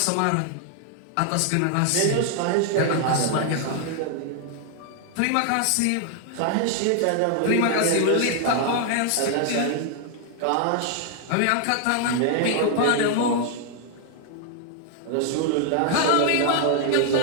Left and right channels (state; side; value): different; both; correlation 0.00